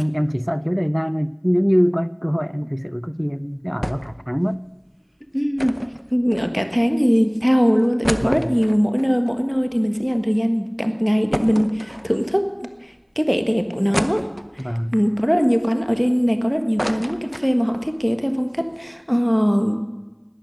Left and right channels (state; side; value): identical; both; correlation 1.00